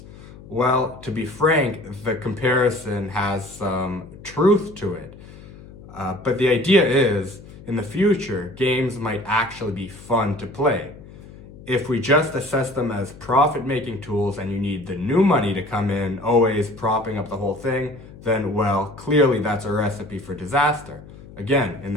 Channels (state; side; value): noise; left; hum, 18 dB below the sound